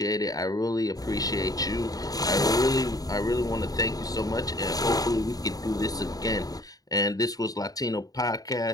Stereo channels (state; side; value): late; right; 0.18 ms